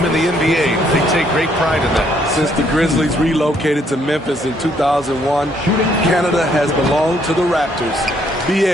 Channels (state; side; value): normal; both; correlation 0.68